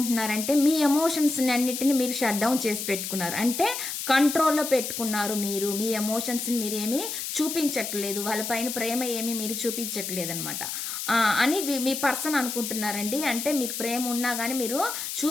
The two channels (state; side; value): noise; left; hiss, 5 dB below the sound